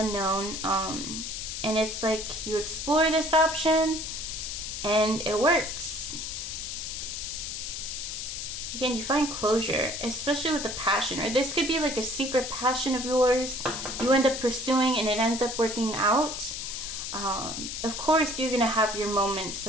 And it's like you explore this option and it works. Again, you find closure, especially with a passion, or this could be like a secret passion of yours you end up pursuing and it ends up working out. Of course, you're going to have your moments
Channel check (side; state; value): left; noise; hiss, 5 dB below the sound